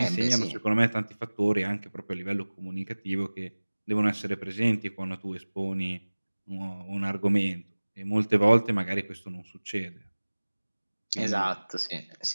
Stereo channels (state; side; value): inverted; both; correlation -1.00